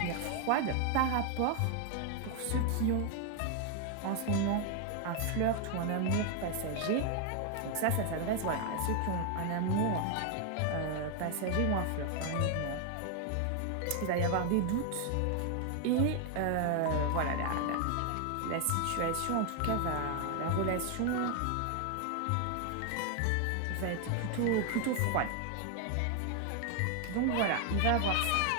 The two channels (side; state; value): both; different; correlation 0.01